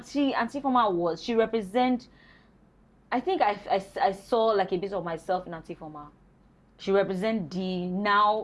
she represents, I think I saw like a bit of myself in Antiforma. She represents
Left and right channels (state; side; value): identical; both; correlation 1.00